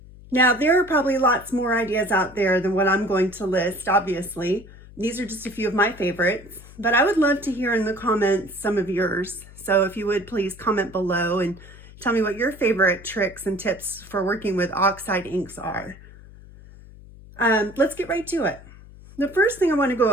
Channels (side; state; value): left; noise; hum, 20 dB below the sound